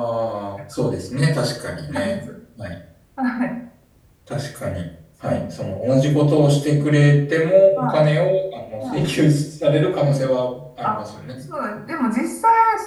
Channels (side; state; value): both; identical; correlation 1.00